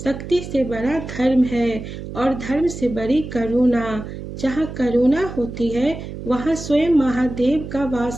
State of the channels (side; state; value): right; noise; hum, 10 dB below the sound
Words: शक्ति से बड़ा धर्म है और धर्म से बड़ी करुणा। जहाँ करुणा होती है वहाँ स्वयं महादेव का